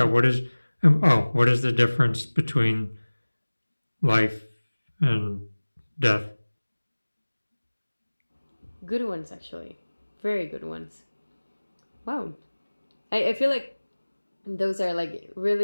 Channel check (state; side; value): inverted; both; correlation -1.00